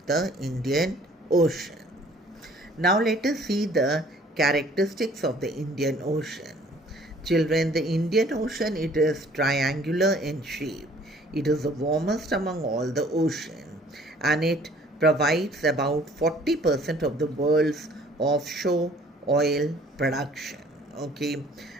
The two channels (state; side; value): normal; both; correlation 0.56